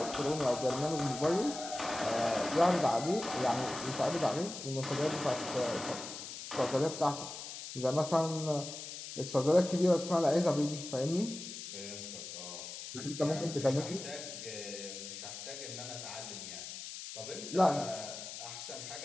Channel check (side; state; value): left; noise; hiss, 9 dB below the sound